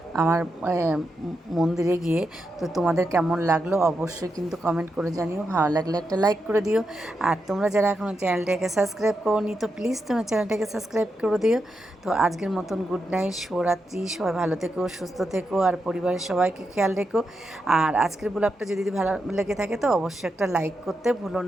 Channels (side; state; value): both; normal; correlation 0.86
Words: আমার মন্দিরে গিয়ে। তো তোমাদের কেমন লাগলো অবশ্যই কিন্তু কমেন্ট করে জানিও, ভালো লাগলে একটা লাইক করে দিও। আর তোমরা যারা এখনও চ্যানেলটাকে সাবস্ক্রাইব করোনি তো প্লিজ তোমরা চ্যানেলটাকে সাবস্ক্রাইব করে দিও। তো আজকের মতন গুড নাইট, শুভরাত্রি, সবাই ভালো থেকো, সুস্থ থেকো, আর পরিবারের সবাইকে খেয়াল রেখো। আর আজকের ব্লগটা যদি ভালো লেগে থাকে তো অবশ্যই একটা লাইক করতে ভুলো